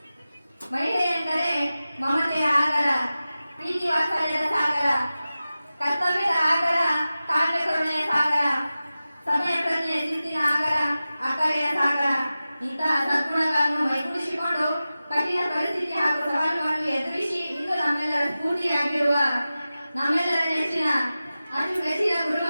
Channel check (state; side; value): inverted; both; correlation -0.95